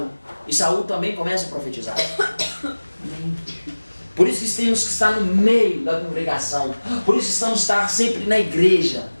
E Saul também começa a profetizar. Por isso que temos que estar no meio da congregação. Por isso que estamos estar sempre na igreja.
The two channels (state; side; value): inverted; both; correlation -1.00